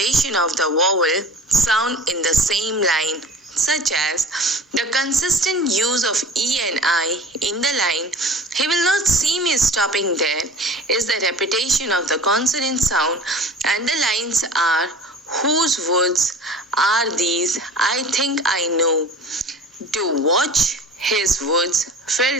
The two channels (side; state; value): both; normal; correlation 0.41